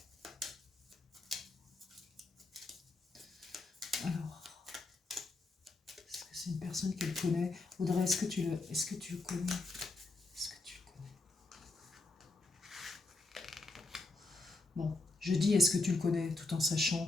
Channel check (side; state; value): right; quieter; 3.1 dB